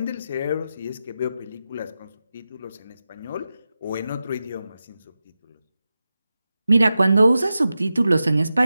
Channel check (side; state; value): both; inverted; correlation -0.92